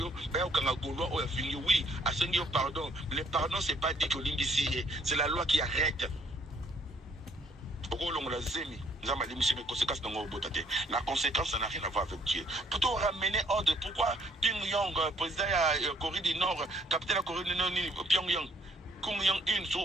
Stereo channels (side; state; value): both; normal; correlation 0.64